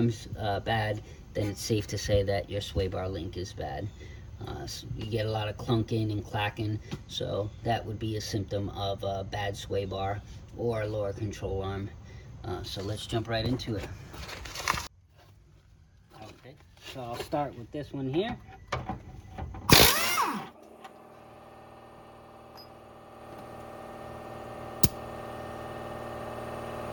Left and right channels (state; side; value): identical; both; correlation 1.00